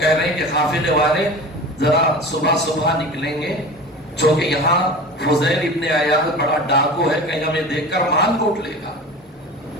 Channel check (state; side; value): normal; both; correlation 0.35